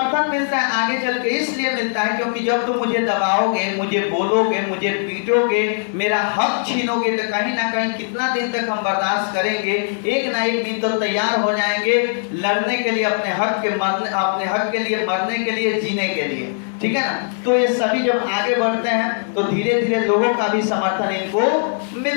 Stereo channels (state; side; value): silent; right; 57 dB below the other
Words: मिलता है आगे चल के, इसलिए मिलता है क्योंकि जब तुम मुझे दबाओगे, मुझे बोलोगे, मुझे पीटोगे, मेरा हक छीनोगे, तो कहीं ना कहीं कितना दिन तक हम बर्दाश्त करेंगे, एक ना एक दिन तो तैयार हो जाएंगे लड़ने के लिए, अपने हक के लिए, मरने के लिए, जीने के लिए, ठीक है ना। तो ये सभी जब आगे बढ़ते हैं तो धीरे धीरे लोगों का भी समर्थन इनको